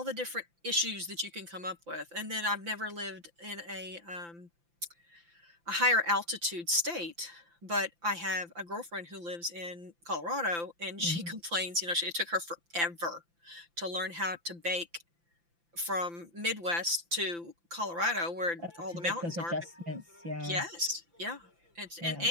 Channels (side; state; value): left; late; 5.9 ms